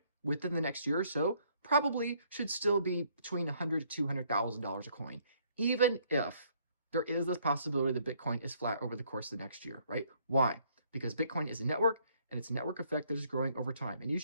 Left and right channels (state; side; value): inverted; both; correlation -0.66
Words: within the next year or so probably should still be between $100,000 to $200,000 a coin, even if there is this possibility that Bitcoin is flat over the course of the next year, right? Why? Because Bitcoin is a network, and it's a network effect that is growing over time. And you